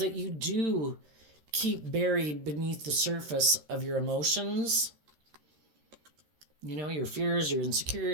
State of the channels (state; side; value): late; left; 13 ms